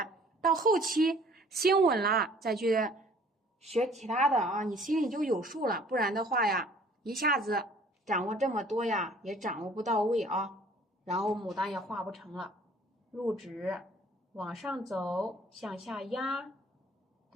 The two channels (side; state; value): both; normal; correlation 0.54